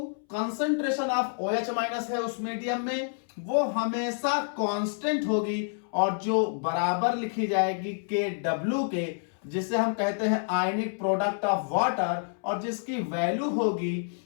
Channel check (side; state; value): right; silent; 59 dB below the other